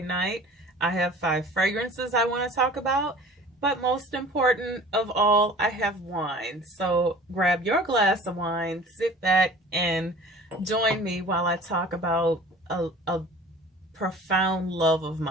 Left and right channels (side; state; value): both; normal; correlation 0.44